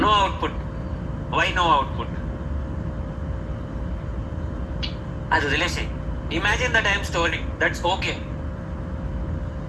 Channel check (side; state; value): both; identical; correlation 1.00